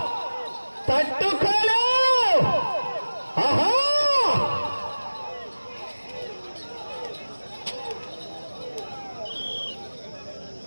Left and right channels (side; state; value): both; inverted; correlation -1.00